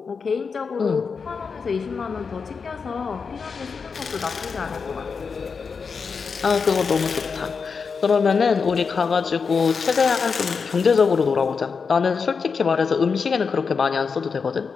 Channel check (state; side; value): quieter; right; 5.4 dB